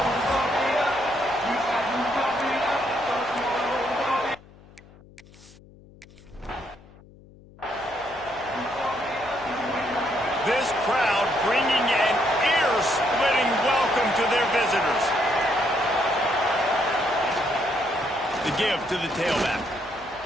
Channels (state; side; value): noise; left; hum, 23 dB below the sound